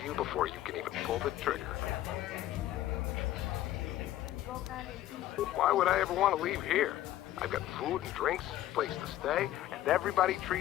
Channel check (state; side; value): quieter; right; 13.7 dB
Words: you before you can even pull the trigger. Why would I ever want to leave here? I've got food and drinks, place to stay, and everybody